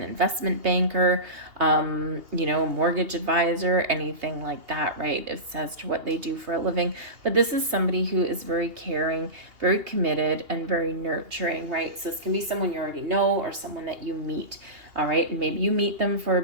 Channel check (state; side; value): late; left; 2.8 ms